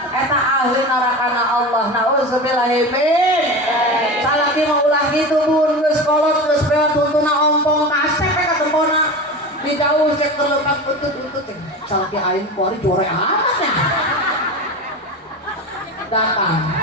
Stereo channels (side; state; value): both; normal; correlation 0.28